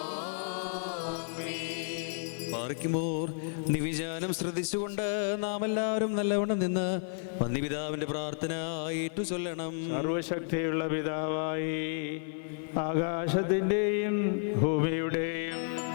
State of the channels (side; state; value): right; silent; 57 dB below the other